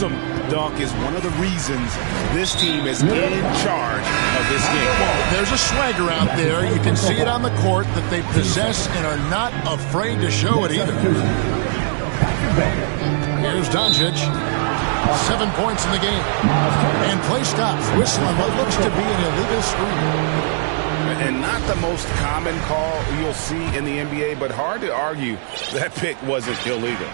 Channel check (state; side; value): silent; left; digital silence